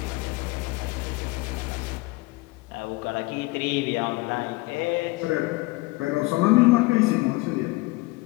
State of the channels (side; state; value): right; quieter; 22.3 dB